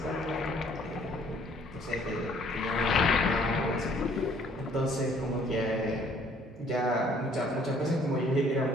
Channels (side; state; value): both; normal; correlation 0.60